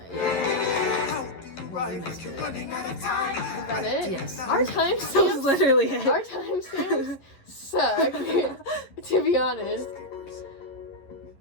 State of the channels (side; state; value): right; late; 11 ms